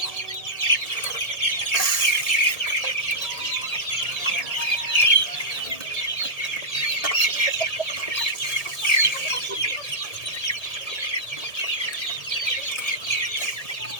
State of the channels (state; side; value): late; right; 1.8 ms